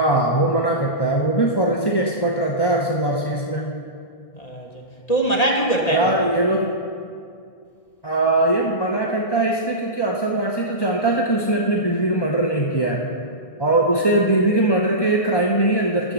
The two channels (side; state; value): right; late; 1.6 ms